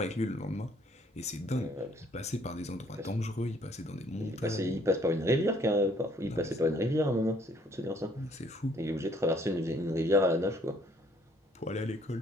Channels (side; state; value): both; normal; correlation 0.63